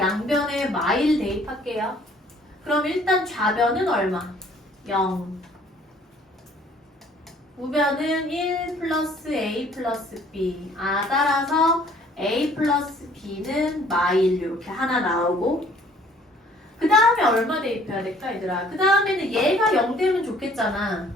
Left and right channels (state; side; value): normal; both; correlation 0.58